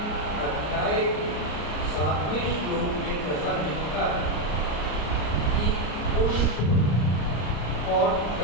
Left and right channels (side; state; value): right; late; 34 ms